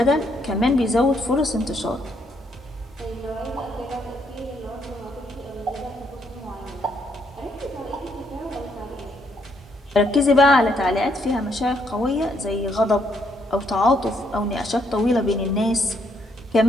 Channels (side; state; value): both; normal; correlation 0.73